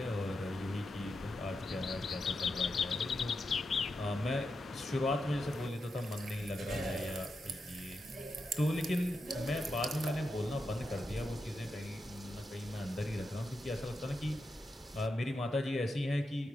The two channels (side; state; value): both; normal; correlation 0.87